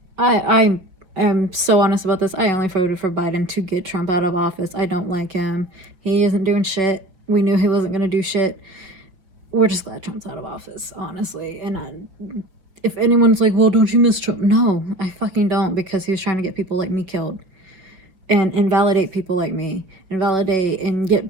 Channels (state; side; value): late; left; 5.2 ms